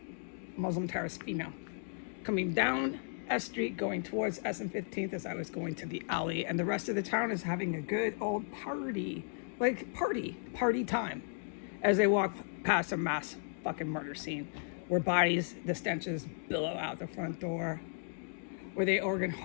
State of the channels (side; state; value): right; silent; digital silence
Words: Muslim terrorist female coming down S Street going towards S and 15th as I was going to the alley, and the rest of the town is having a good old party. Like party time, as they walk past a mass fucking murder scene where bodies, the stenches billow out the front door, where they organ